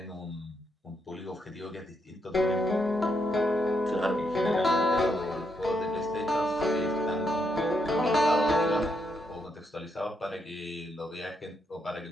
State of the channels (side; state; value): both; normal; correlation 0.78